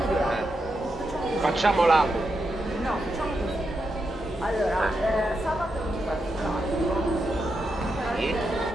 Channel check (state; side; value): normal; both; correlation 0.85